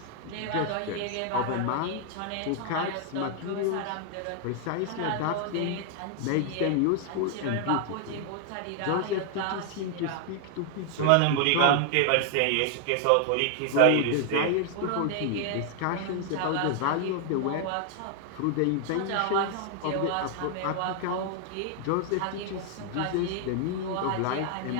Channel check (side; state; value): both; different; correlation 0.00